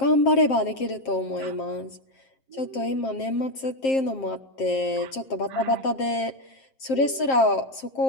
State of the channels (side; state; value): right; late; 7.5 ms